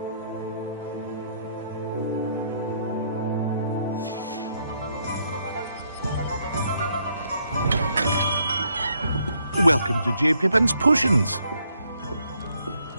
Welcome to J. Pippin's Potions.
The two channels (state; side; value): inverted; both; correlation -0.72